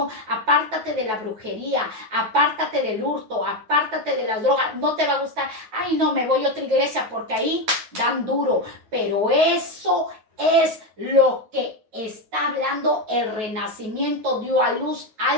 apártate de la brujería, apártate del hurto, apártate de las drogas, no te va a gustar, ay no, me voy a otra iglesia porque ahí dan duro, pero eso es lo que está hablando el Renacimiento, dio a luz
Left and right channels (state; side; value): late; left; 9.2 ms